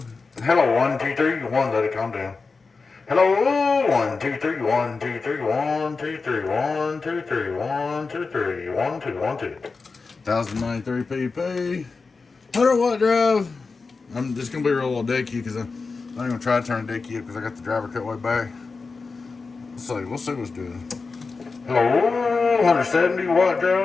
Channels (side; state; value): right; quieter; 4.3 dB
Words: Hello, 1 2 3 1. Let it calm down. Hello, 1 2 3 1 2 3 1 2 3 1 2 3 1 2 3 1 2 1 2. 1093 pp. 100 watt drive. I'm just gonna be real little dead key because I'm not gonna try to turn the dead key up because I got the driver cut way back. We'll see what's doing. Hello, 170 watt